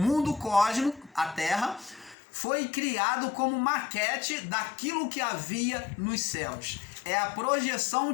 cósmico, a terra, foi criado como maquete daquilo que havia nos céus. É a projeção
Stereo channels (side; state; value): right; drops out; at 2.1 s